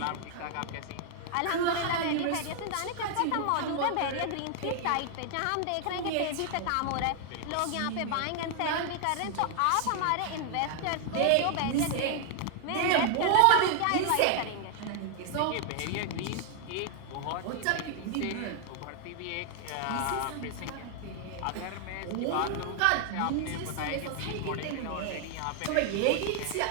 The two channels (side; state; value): both; different; correlation 0.00